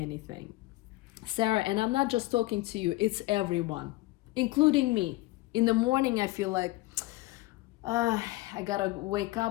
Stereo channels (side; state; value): right; quieter; 19.8 dB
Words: Sarah, and I'm not just talking to you, it's everyone, including me. In the morning, I feel like, I gotta wake